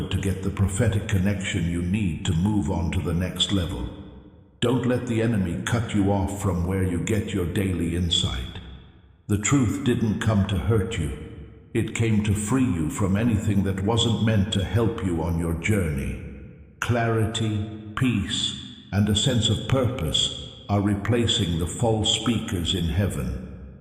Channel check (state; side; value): identical; both; correlation 1.00